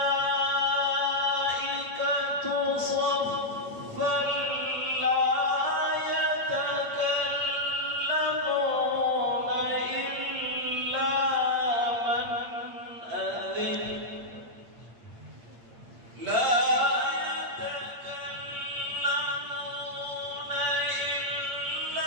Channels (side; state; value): left; late; 8.8 ms